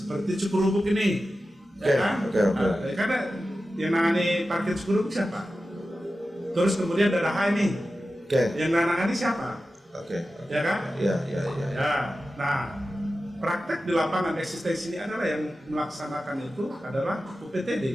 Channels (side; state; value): both; normal; correlation 0.93